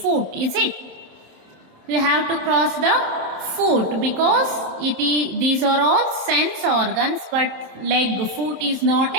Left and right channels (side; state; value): left; late; 27 ms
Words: foot. Is it? You have to cross the foot because these are all sense organs, but leg, foot is not